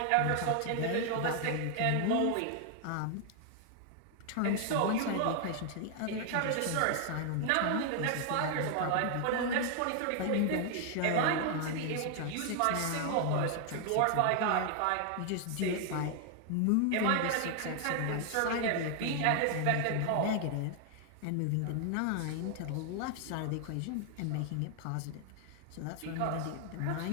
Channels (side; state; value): both; different; correlation 0.00